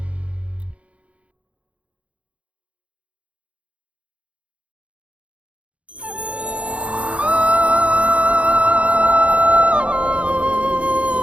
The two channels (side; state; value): left; late; 0.063 ms